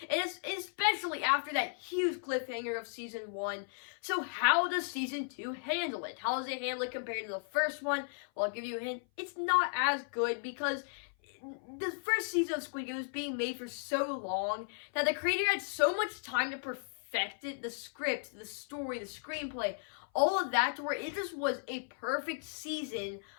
And especially after that huge cliffhanger of Season 1. So, how does Season 2 handle it? How does it handle it compared to the first one? Well, I'll give you a hint. It's not as good because the first season of Squid Game was being made for so long that the creator had so much time to perfect it, the script, the story, the screenplay, all of that, to where it just was a perfect season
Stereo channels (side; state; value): right; silent; 54 dB below the other